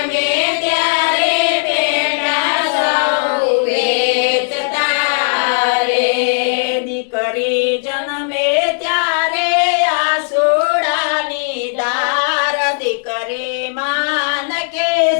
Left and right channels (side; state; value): right; silent; digital silence